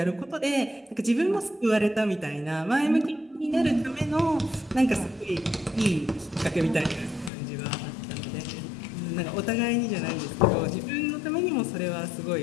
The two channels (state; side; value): drops out; right; at 7.3 s